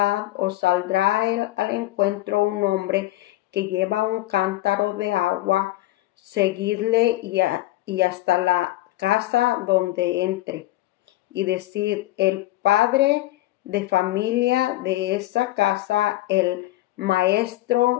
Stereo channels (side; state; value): right; quieter; 17.0 dB